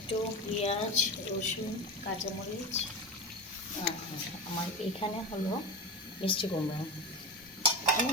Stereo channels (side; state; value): both; normal; correlation 0.23